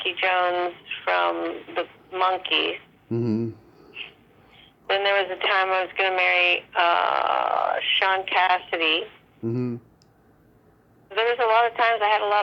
Jones from the Monkees. Hmm. Then there was a time I was going to marry Sean Cassidy. Hmm. There was a lot of times I had a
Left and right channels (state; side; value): identical; both; correlation 1.00